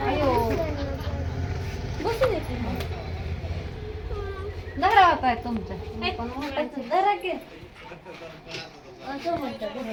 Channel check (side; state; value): both; identical; correlation 1.00